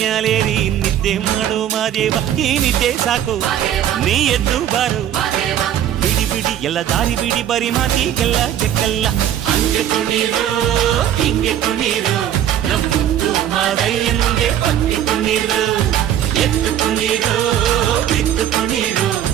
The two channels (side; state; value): left; quieter; 10.8 dB